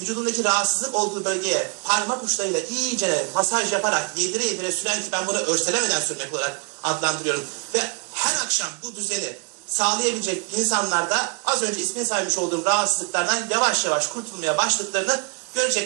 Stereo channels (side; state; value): left; quieter; 33.9 dB